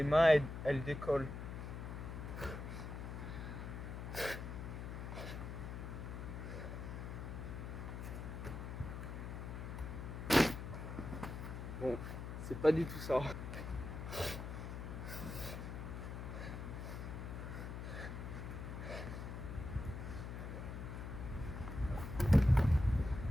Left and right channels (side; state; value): left; noise; hum, 6 dB below the sound